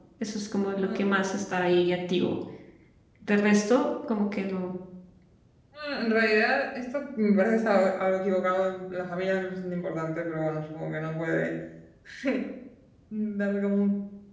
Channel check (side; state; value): both; identical; correlation 1.00